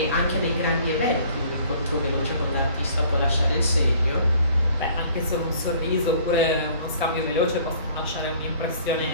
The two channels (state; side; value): inverted; both; correlation -0.54